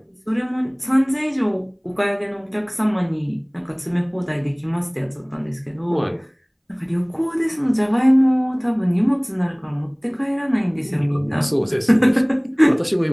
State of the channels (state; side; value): identical; both; correlation 1.00